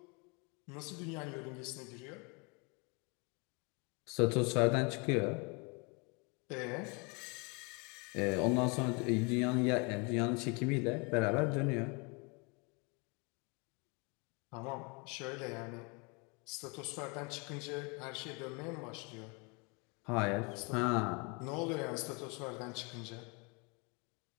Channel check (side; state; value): right; quieter; 31.3 dB